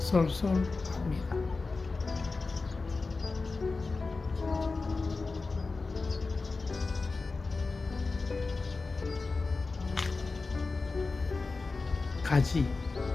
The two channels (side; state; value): right; quieter; 3.9 dB